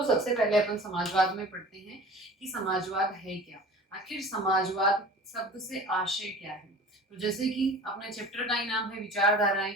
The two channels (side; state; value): both; normal; correlation 0.41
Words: सबसे पहले अपन समाजवाद में पढ़ते हैं कि समाजवाद है क्या। आखिर समाजवाद शब्द से आशय क्या है। तो जैसे कि अपने चैप्टर का ही नाम है विचारधाराएं,